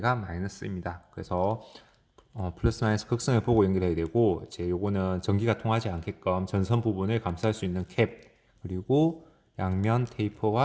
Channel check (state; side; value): identical; both; correlation 1.00